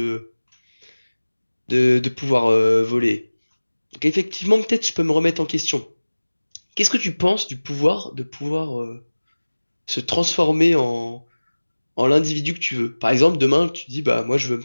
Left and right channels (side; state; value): both; inverted; correlation -1.00